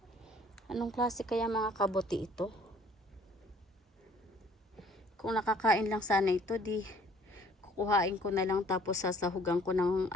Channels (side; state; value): both; normal; correlation 0.57